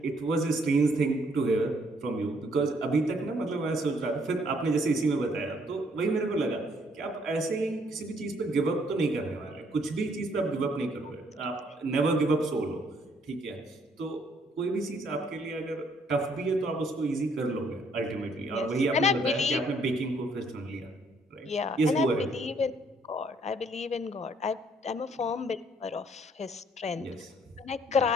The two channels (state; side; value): normal; both; correlation 0.66